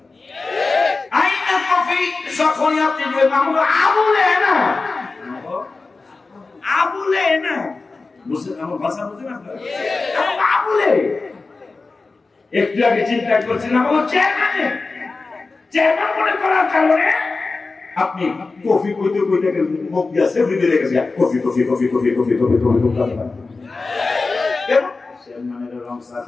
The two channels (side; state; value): right; quieter; 3.8 dB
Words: আইনা কফি যখন আপনি আবুলে না বুঝছেন আমার ভাষা বুঝেন আপনারা আবুলে একটু আগে চিন্তা করছিলাম আমার চেয়ারম্যান মনে করার কারণে আপনি কফি কইতে কইতে মুখ দিয়ে সেভরি দিয়ে গেছে coffee coffee coffee coffee coffee coffee coffee coffee চেয়ারম্যানের রংসা